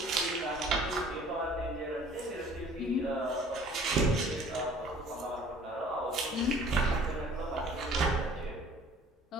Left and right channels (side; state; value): both; normal; correlation 0.51